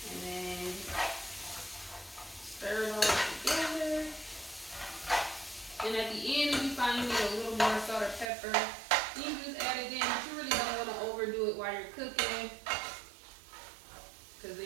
And then stir it all together. And at the end, if you find you need a little more salt or pepper, you can just add it in, but you really don't want to overdo it while you're cooking, because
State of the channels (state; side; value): drops out; left; at 8.3 s